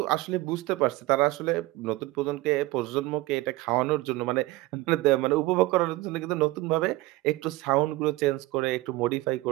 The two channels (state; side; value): quieter; left; 19.6 dB